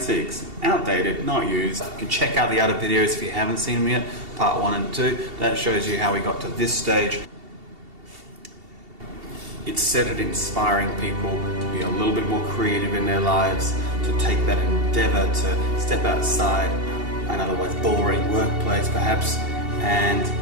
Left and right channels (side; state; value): left; late; 2.7 ms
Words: Outdated, not used. You can check out the other videos if you haven't seen them yet, part 1 and 2. That shows you how we got to this stage. It's set at inspiring people to be a little bit more creative in their lives, to take that endeavour to step outside an otherwise boring workplace perhaps, and